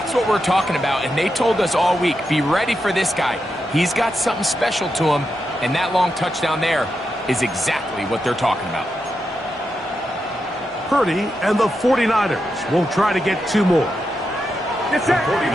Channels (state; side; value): normal; both; correlation 0.86